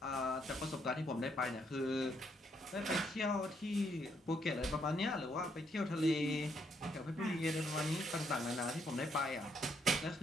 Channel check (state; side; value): normal; both; correlation 0.73